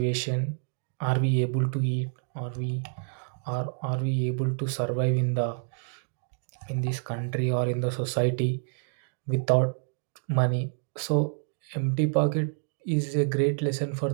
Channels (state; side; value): silent; left; digital silence